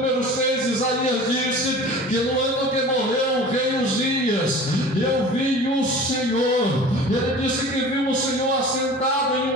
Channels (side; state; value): both; normal; correlation 0.40